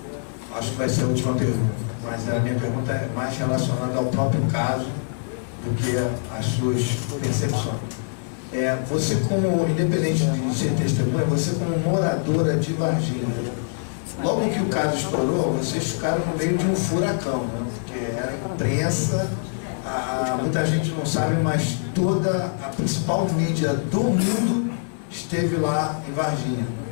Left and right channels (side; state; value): right; silent; digital silence